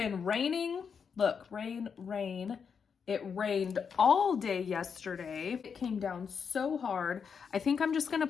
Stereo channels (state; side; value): quieter; right; 6.4 dB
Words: raining. Look, rain, rain. It rained all day yesterday. It came down so hard. I think I'm just gonna